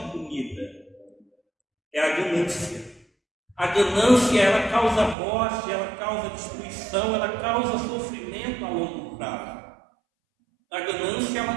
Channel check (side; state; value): left; drops out; at 5.2 s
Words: comida, é a ganância. A ganância, ela causa morte, ela causa destruição, ela causa sofrimento a longo prazo. A ganância, ela